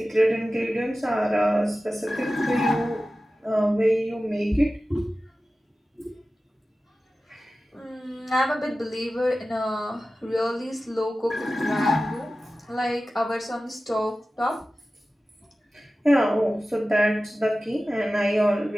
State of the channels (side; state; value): both; normal; correlation 0.95